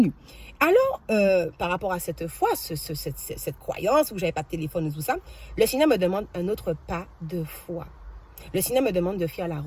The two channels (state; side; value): identical; both; correlation 1.00